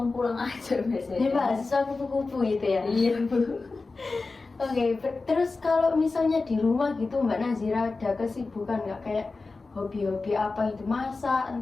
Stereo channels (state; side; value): quieter; right; 3.8 dB